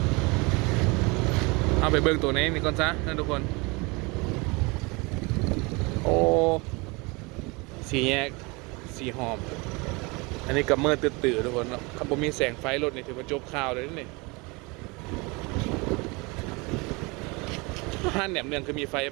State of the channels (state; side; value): quieter; left; 27.0 dB